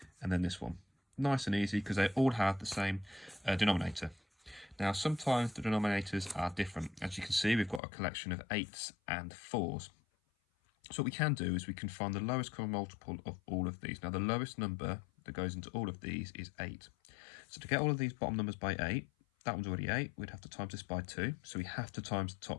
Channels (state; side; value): drops out; right; at 7.8 s